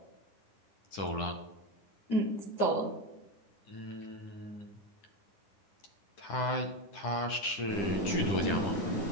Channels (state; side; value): late; right; 10 ms